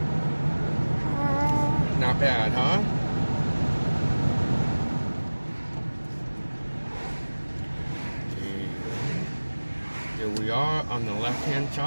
Not bad, huh? Here we are on the left-hand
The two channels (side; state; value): both; inverted; correlation -1.00